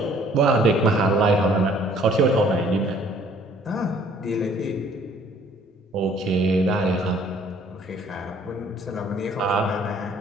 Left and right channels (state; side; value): normal; both; correlation 0.58